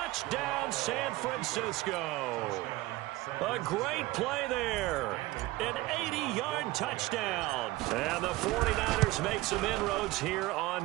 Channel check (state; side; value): quieter; left; 19.0 dB